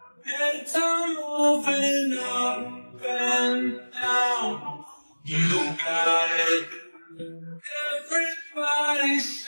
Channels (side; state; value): both; inverted; correlation -1.00